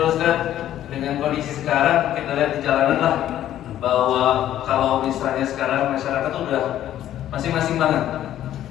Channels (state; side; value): quieter; right; 12.1 dB